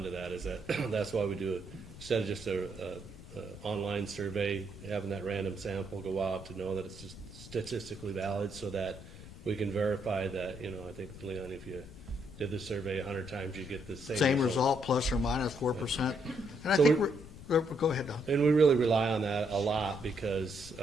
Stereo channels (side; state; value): left; noise; rumble, 16 dB below the sound